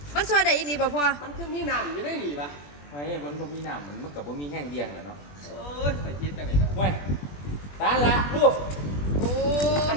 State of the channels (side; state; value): right; late; 21 ms